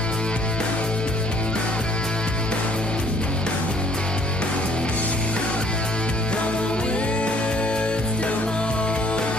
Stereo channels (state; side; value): normal; both; correlation 0.60